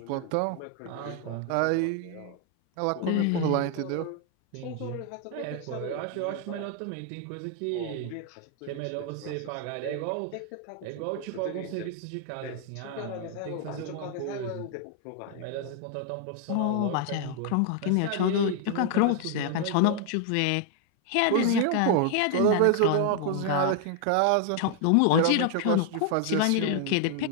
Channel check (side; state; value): both; different; correlation 0.00